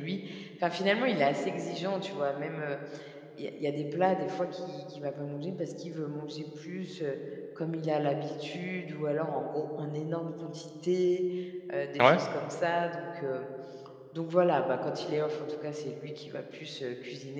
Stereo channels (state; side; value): identical; both; correlation 1.00